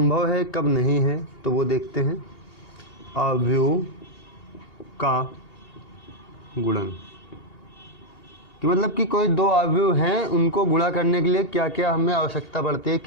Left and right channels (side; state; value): right; late; 2.8 ms